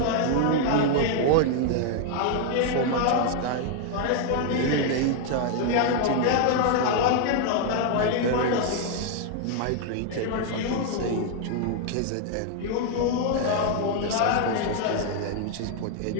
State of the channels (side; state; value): both; different; correlation 0.00